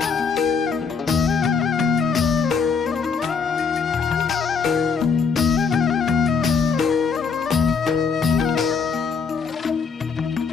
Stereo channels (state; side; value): quieter; right; 5.5 dB